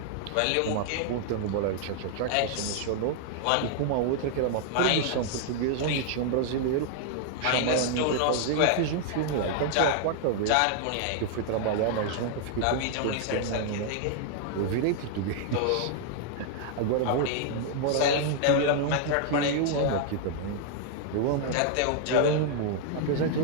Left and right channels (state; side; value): different; both; correlation 0.00